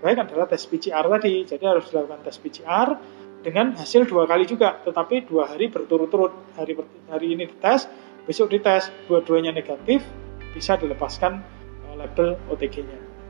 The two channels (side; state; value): left; silent; digital silence